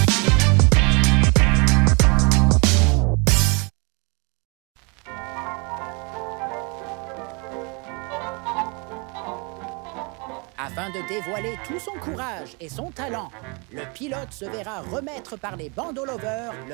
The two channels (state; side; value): quieter; left; 31.9 dB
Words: Afin de dévoiler tout son courage et son talent, le pilote se verra remettre par les bandeaux lovers